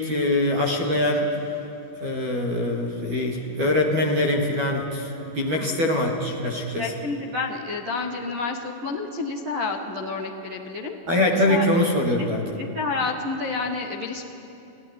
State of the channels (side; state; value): left; late; 12 ms